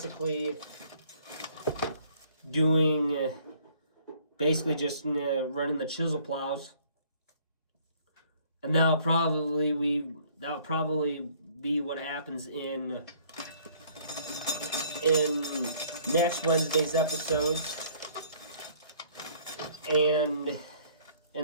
doing, basically just running the chisel plows. And that'll probably be what happens in next Wednesday's episodes, and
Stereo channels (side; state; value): both; inverted; correlation -0.59